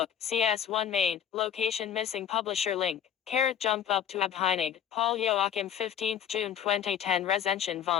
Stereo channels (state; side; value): quieter; right; 9.2 dB